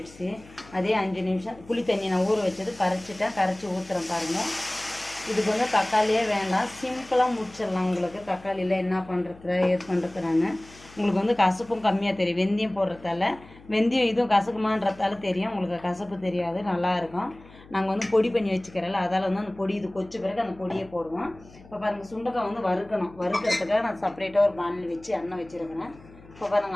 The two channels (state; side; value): noise; left; hum, 22 dB below the sound